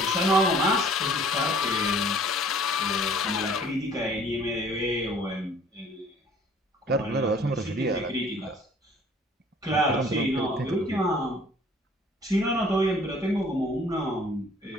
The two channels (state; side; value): normal; both; correlation 0.54